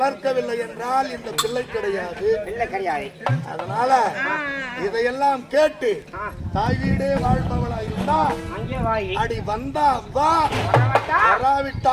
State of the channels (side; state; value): both; identical; correlation 1.00